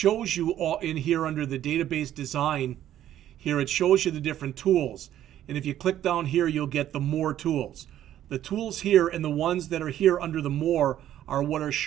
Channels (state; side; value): quieter; left; 11.9 dB